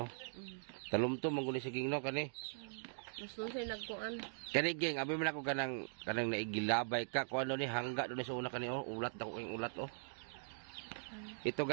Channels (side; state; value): left; silent; digital silence